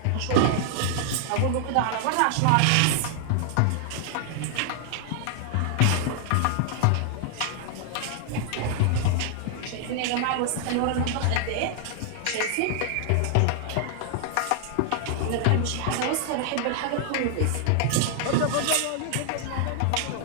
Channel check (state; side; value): different; both; correlation 0.00